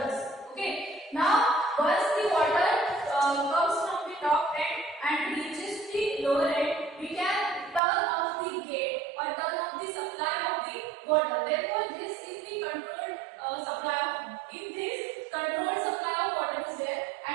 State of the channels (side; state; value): left; drops out; at 7.8 s